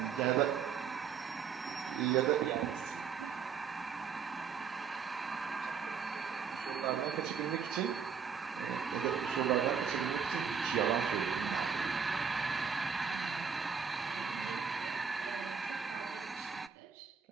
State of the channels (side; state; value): left; quieter; 6.5 dB